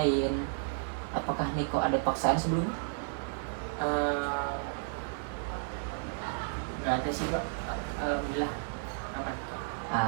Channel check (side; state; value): left; silent; digital silence